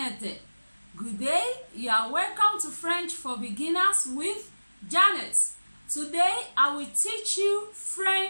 Good day, you are welcome to French for Beginners with Janet. Today I will teach you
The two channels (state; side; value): inverted; both; correlation -1.00